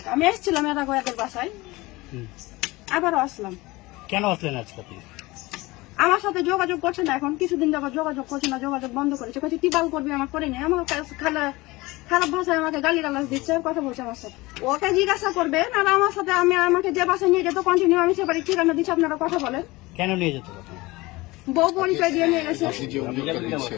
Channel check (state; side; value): quieter; right; 21.4 dB